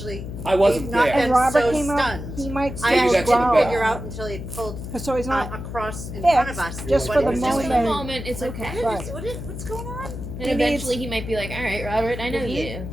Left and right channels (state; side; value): noise; left; hum, 8 dB below the sound